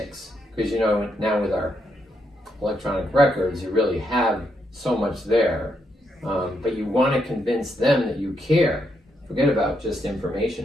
because you know now with our electronic records, you really have so much there. But you want to convince them that you care. Forget about just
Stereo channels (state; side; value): normal; both; correlation 0.79